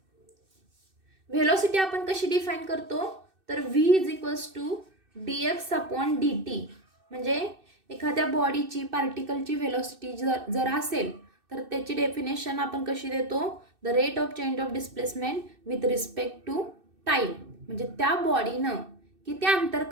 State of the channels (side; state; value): left; late; 2.6 ms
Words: व्हेलॉसिटी आपण कशी डिफाईन करतो, तर v is equals to dx upon dt. म्हणजे एखाद्या बॉडीची पार्टिकलची व्हेलॉसिटी जर असेल तर त्याची डेफिनेशन आपण कशी देतो, the rate of change of displacement with respect to time. म्हणजे त्या बॉडीनं किती अंतर